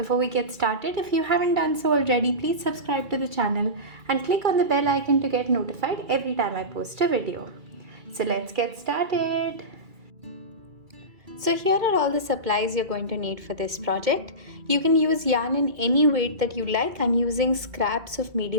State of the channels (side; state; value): left; late; 2.3 ms